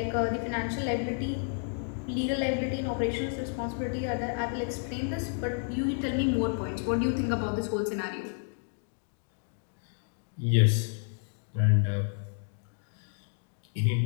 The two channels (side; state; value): right; silent; 57 dB below the other